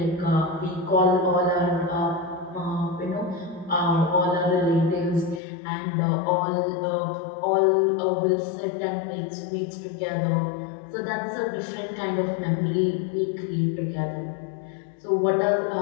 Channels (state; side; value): drops out; right; at 5.4 s